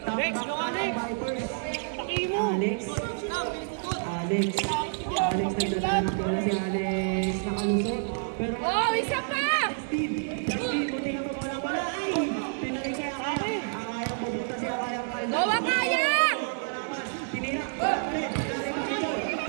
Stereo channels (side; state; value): left; silent; digital silence